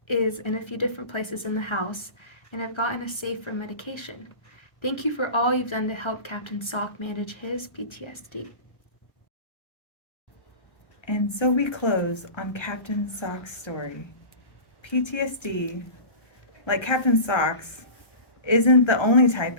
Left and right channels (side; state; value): right; late; 1.3 ms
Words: is in a few different places in the house, and I've gotten a safe for medication. Thank you for all you've done to help Captain Sock manage his PTSD. And so we close on Captain Sock's story. PTSD, like Captain Sock's, isn't the only type